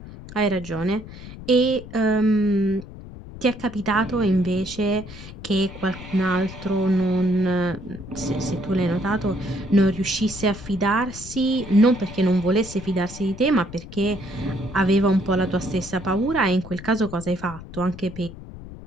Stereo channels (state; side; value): noise; left; rumble, 14 dB below the sound